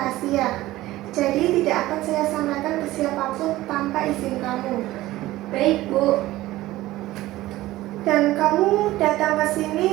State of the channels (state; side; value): quieter; left; 16.7 dB